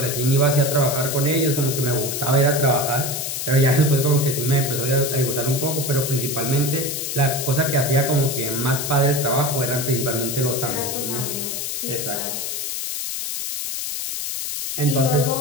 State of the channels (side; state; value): left; noise; hiss, 4 dB below the sound